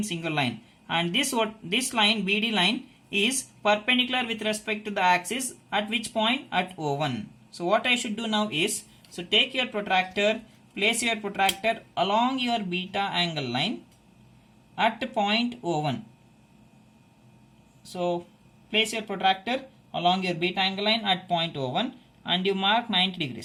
single line, and this line BD line is perpendicular with respect to the axis at which point? At O1. So what I should do now is, so take your protractor, place your protractor along your beta angle line at point O1. So place your protractor along your beta angle line at point O1 and you mark 90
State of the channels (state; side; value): identical; both; correlation 1.00